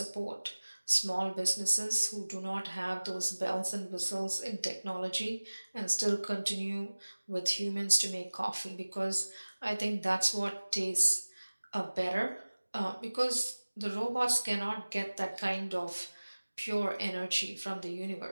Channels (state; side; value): inverted; both; correlation -1.00